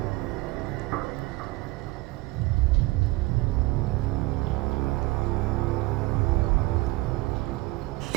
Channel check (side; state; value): left; quieter; 20.8 dB